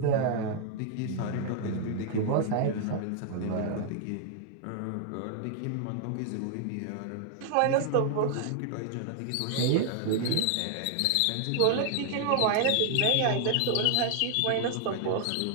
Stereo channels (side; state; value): both; different; correlation 0.00